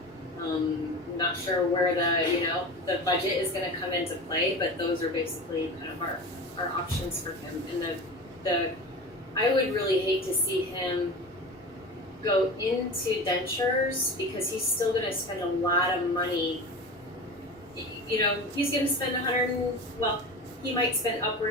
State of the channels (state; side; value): normal; both; correlation 0.31